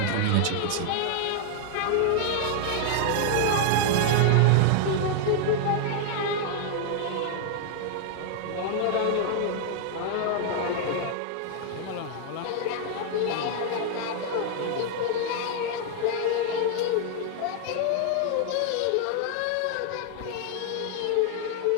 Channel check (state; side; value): different; both; correlation 0.00